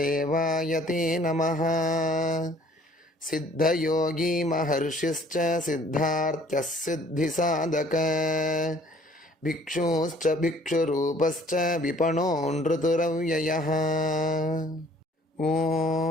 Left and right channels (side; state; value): both; normal; correlation 0.57